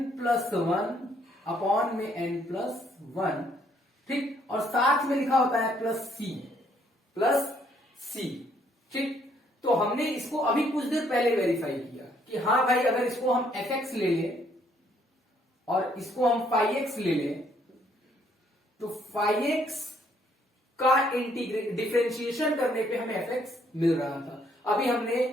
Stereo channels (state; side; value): normal; both; correlation 0.67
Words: plus one upon में n प्लस वन। ठीक, और साथ में लिखा होता है प्लस सी। ठीक, तो हमने इसको अभी कुछ देर पहले वेरीफाई किया कि हाँ भाई, अगर इसको हम fx ले लें और इसको हम फाई एक्स ले लें, तो फाई एक्स का डिफरेंशिएशन करने पे हमें fx मिल रहा था। अभी